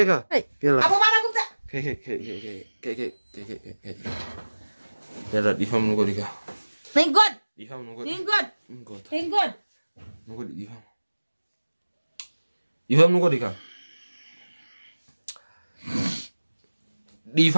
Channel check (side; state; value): both; inverted; correlation -1.00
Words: يلا أبو مانا قمت كيكا يلا ديفهم نقول لك Thank God ديفهم نقول Thank God نقول ديفهم نقول لك